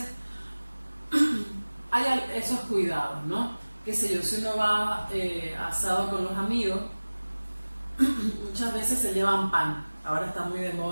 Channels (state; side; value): inverted; both; correlation -1.00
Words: hay esos cuidados, ¿no? Qué sé yo, si uno va asado con los amigos, muchas veces se llevan pan. Ahora está muy de